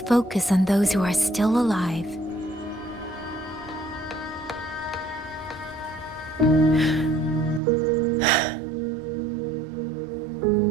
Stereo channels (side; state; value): left; drops out; at 7.6 s